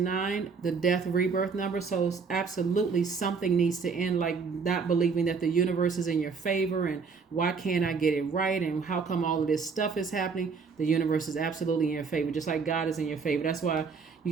the death rebirth number. So absolutely something needs to end, like not believing that the universe is in your favor and why can't I get it right and how come all of this stuff is happening. The universe is absolutely in your favor, just like God is in your favor. That's why you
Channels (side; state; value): left; quieter; 5.2 dB